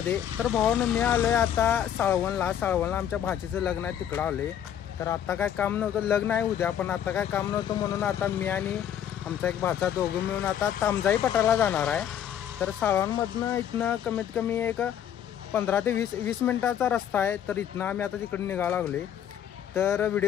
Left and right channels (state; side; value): quieter; right; 9.9 dB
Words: तर भावानं मी आलोय आता साळवणला आमच्या भाचीचं लग्न आहे, तिकडं आलोय. तर आता काय काम नव्हतं, लग्न आहे उद्या, पण आता काय काम नव्हतं म्हणून आता मी आणि आमचा एक भाचा दोघं मिळून आता तामजाई पठारला जाणार आहे. तर साळवणमधनं इथनं कमीत कमी एक 15 ते 20 मिनिटाचा रस्ता आहे. तर इथनं आम्ही आता तिकडे निघायला लागले. तर